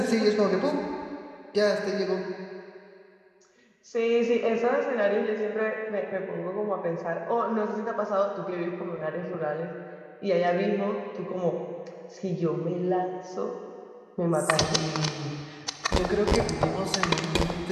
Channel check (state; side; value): identical; both; correlation 1.00